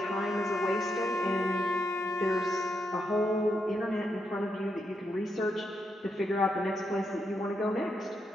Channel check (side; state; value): both; normal; correlation 0.81